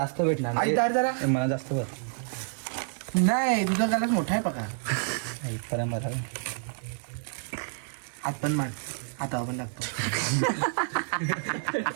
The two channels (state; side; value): silent; left; 59 dB below the other